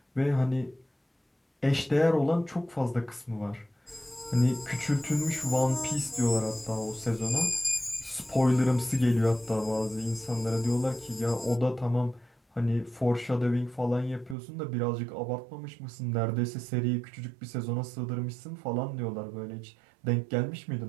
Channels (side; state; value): left; drops out; at 14.4 s